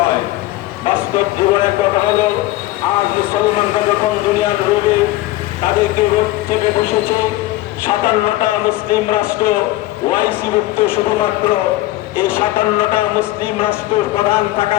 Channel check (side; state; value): right; quieter; 17.2 dB